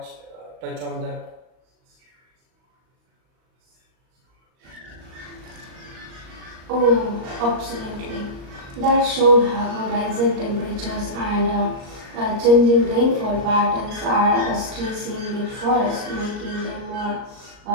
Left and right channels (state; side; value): late; left; 38 ms